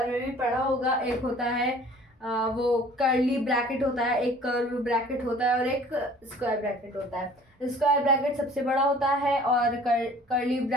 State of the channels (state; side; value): normal; both; correlation 0.50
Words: में भी पढ़ा होगा, एक होता है वो कर्ली ब्रैकेट होता है, एक कर्व ब्रैकेट होता है, और एक स्क्वायर ब्रैकेट होता है। स्क्वायर ब्रैकेट सबसे बड़ा होता है और कर्ली